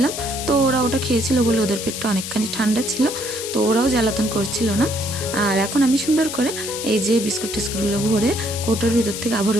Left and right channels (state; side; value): noise; left; hiss, 7 dB below the sound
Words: তো ওরা ওটা খেয়েছিল বলে ওদের পেটটা অনেকখানি ঠান্ডা ছিল, তো ওরাও জ্বালাতন করছিল না। আর এখন আমি সুন্দর করে এই যে টিস্কুটগুলো ভরে কৌটোর ভিতর থেকে